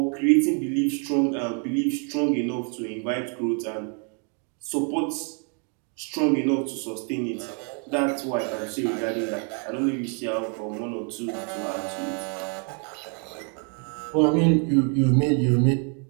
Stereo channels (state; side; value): quieter; left; 39.9 dB